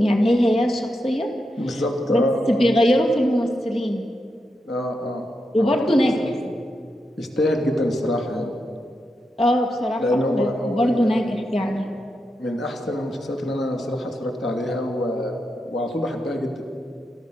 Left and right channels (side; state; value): both; normal; correlation 0.86